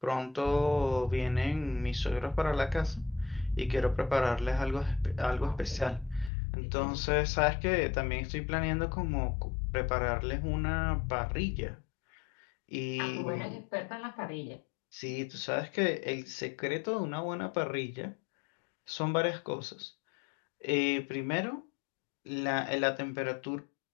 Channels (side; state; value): right; drops out; at 6.3 s